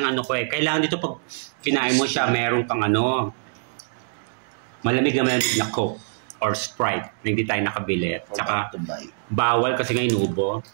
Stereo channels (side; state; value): left; silent; digital silence